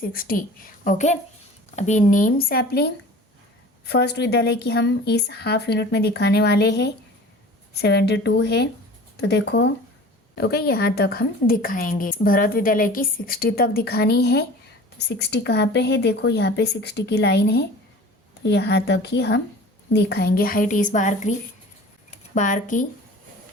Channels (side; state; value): both; normal; correlation 0.42